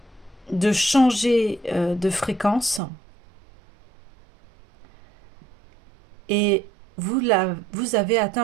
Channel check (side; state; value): left; drops out; at 2.8 s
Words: changer de fréquence et vous avez